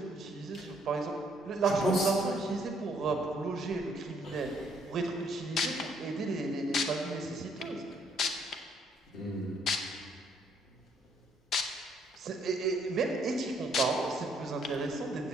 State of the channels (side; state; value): both; normal; correlation 0.67